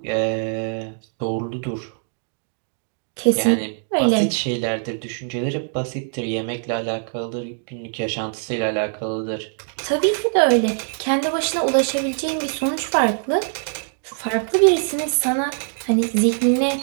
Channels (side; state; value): left; silent; digital silence